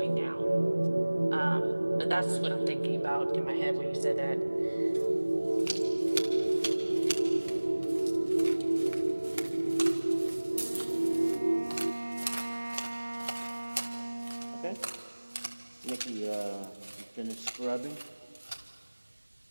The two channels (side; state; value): both; inverted; correlation -1.00